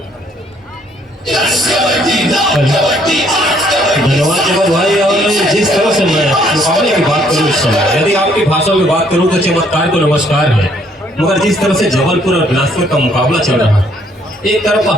धन्यवाद जगत भाई। और जिस तरह से मैं मुकाबले की बात करूँ इस समय, यदि आपकी भाषा में बात करूँ तो चमत्कार को नमस्कार है, मगर जिस तरह से जबलपुर और बिलासपुर का मुकाबला चल रहा है, एक तरफ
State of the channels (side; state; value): both; normal; correlation 0.66